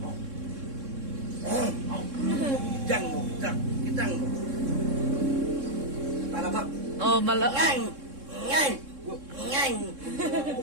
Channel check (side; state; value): left; late; 3.6 ms